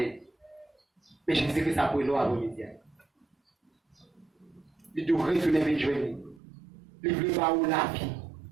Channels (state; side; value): drops out; left; at 6.4 s